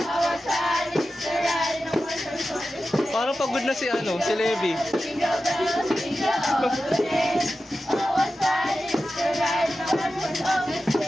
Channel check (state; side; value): normal; both; correlation 0.93